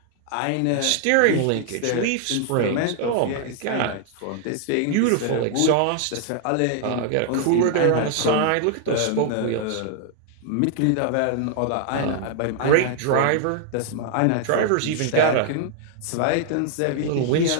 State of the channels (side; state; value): both; different; correlation 0.00